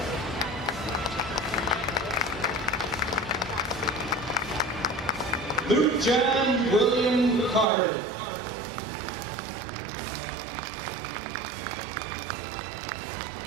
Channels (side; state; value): left; drops out; at 7.7 s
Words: Luke John William Carter.